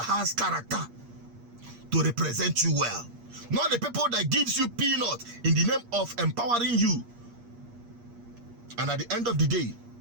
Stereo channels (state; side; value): late; left; 8.5 ms